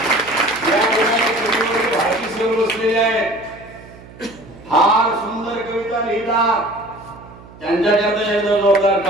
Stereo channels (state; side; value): noise; right; hum, 20 dB below the sound